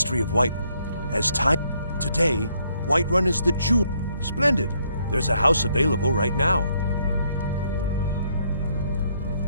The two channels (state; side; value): inverted; both; correlation -0.71